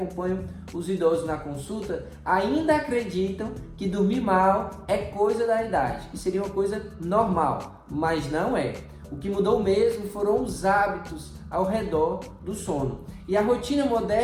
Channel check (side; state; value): both; identical; correlation 1.00